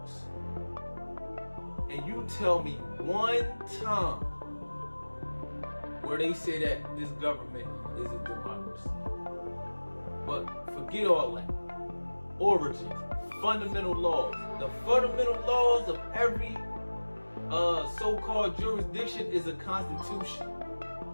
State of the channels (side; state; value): both; inverted; correlation -1.00